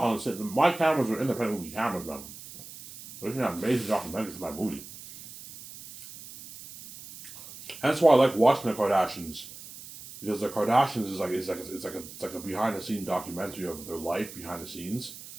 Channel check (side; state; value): right; noise; hiss, 15 dB below the sound